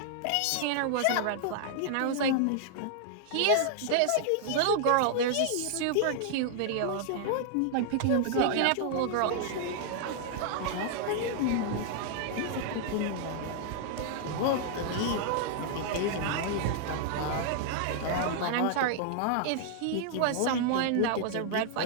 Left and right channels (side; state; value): both; different; correlation -0.01